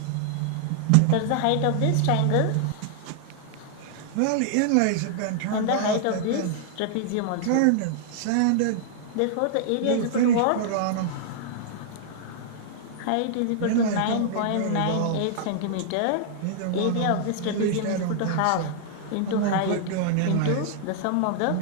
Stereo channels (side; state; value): both; different; correlation -0.01